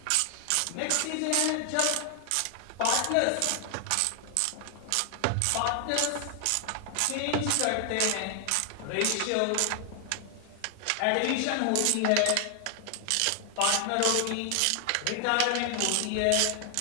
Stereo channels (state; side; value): different; both; correlation 0.00